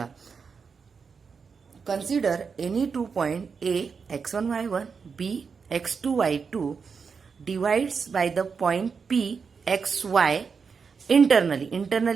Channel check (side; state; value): left; quieter; 5.6 dB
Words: Consider any 2 point A x1 y1 B x2 y2 divides by the point P xy internally.